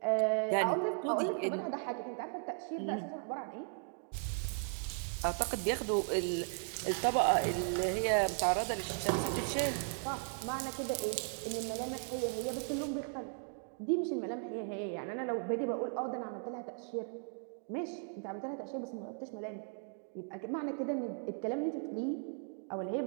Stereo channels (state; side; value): silent; left; 53 dB below the other